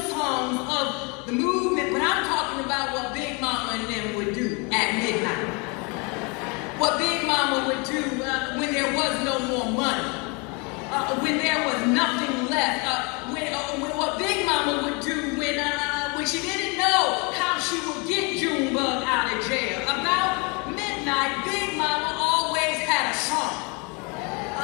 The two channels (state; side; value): quieter; right; 31.0 dB